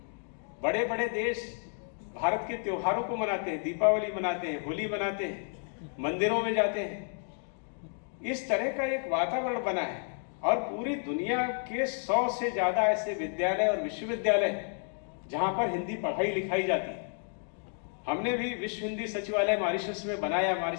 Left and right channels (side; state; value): right; silent; 56 dB below the other